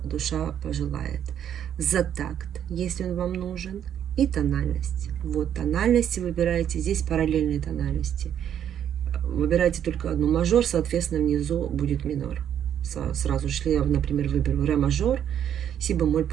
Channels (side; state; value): left; quieter; 9.6 dB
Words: душа пожелает. За такт, если он вам нужен. И тональность. Вот тональности выбираете. Здесь параллельные тональности. Выбирайте только одну мажор, соответственно, внизу будет минор. Сразу же, если я, например, выберу ре мажор, си бемоль